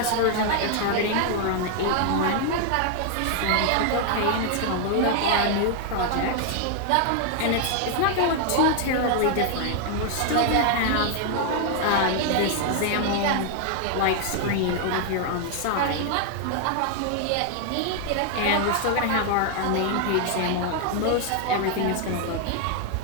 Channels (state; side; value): different; both; correlation 0.00